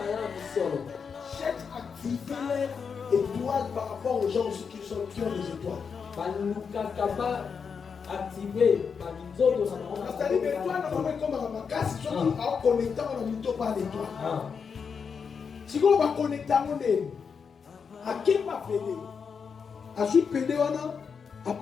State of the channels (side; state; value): right; quieter; 6.1 dB